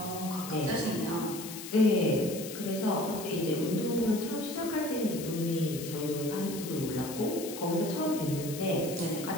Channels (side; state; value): left; noise; hiss, 10 dB below the sound